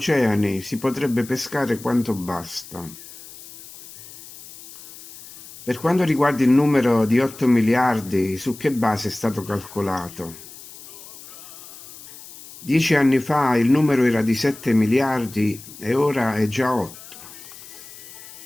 si potrebbe pescare quanto basta. Per quanto riguarda il numero di 8 miliardi, su che base è stato calcolato? 10 anni fa il numero era di 7 miliardi e ora è già 8.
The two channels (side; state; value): left; noise; hiss, 17 dB below the sound